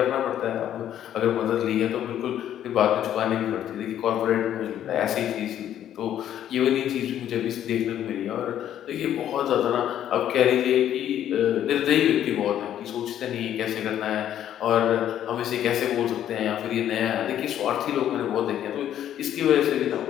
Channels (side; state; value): right; quieter; 10.9 dB